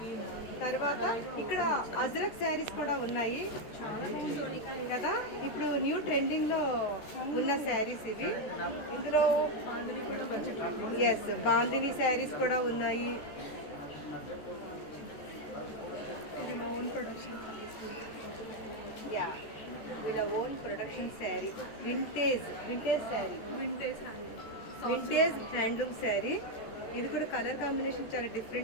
తర్వాత ఇక్కడ అజ్రక్ శారీస్ కూడా ఉన్నాయి కదా, ఇప్పుడు న్యూ ట్రెండింగ్లో ఉన్న శారీస్ ఇవి. ఇందులో ఎస్ బాందిని శారీస్ కూడా ఉన్నాయి. యా, వీళ్ళ own production sari, vintage sari, vintage handloom sari. ఇది కూడా కలర్ కాంబినేషన్ చాలా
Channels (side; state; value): right; late; 14 ms